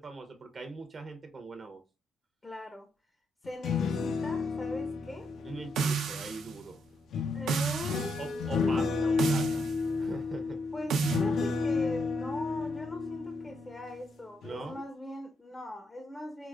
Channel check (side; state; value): both; normal; correlation 0.79